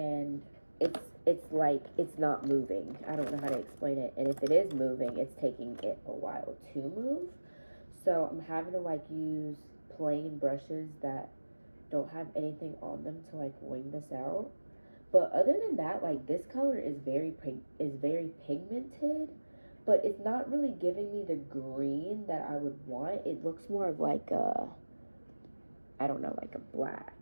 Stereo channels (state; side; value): inverted; both; correlation -1.00